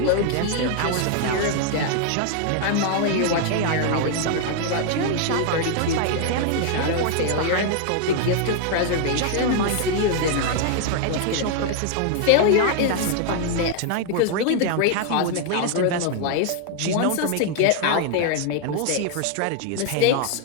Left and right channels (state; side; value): different; both; correlation 0.00